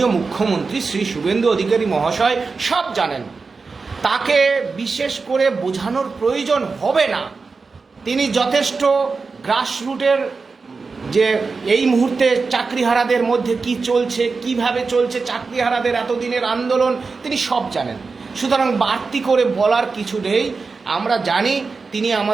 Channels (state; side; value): quieter; left; 4.4 dB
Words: মুখ্যমন্ত্রী শ্রী শুভেন্দু অধিকারী মহাশয় সব জানেন, তাকে বিশেষ করে বোঝানোর প্রয়োজন হবে না। তিনি যথেষ্ট গ্রাসরুটের যে এই মুহূর্তে চাকরিহারাদের মধ্যে কি চলছে, কিভাবে চলছে চাকরিহারাদের এতদিনের আন্দোলন, তিনি সব জানেন। সুতরাং বাড়তি করে বলার কিছু নেই, আমরা জানি তিনি